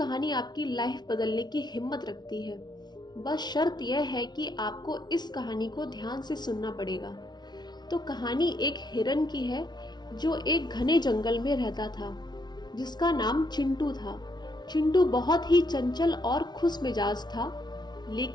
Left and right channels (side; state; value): right; late; 0.20 ms